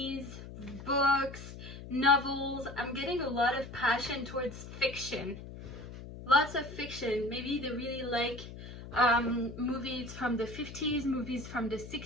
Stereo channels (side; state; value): left; noise; hum, 12 dB below the sound